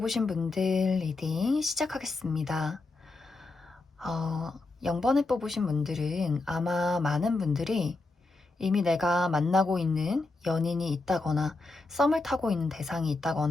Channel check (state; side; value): quieter; right; 3.4 dB